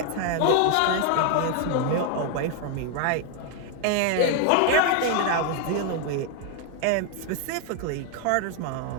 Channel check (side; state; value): both; different; correlation 0.01